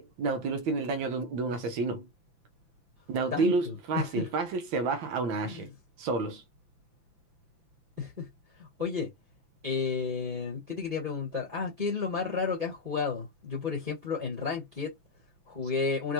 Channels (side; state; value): left; late; 6.0 ms